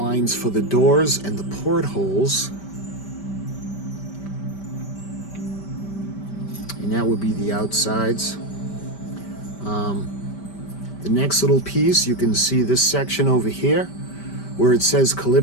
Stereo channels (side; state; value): right; late; 5.1 ms